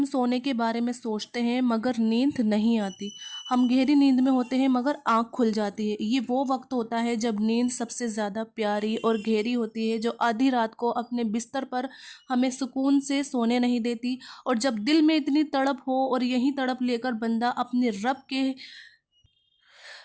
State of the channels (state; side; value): identical; both; correlation 1.00